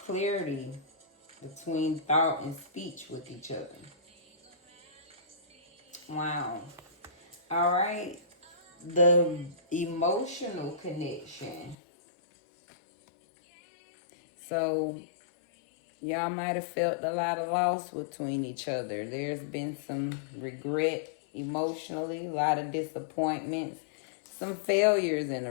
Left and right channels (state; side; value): drops out; right; at 11.8 s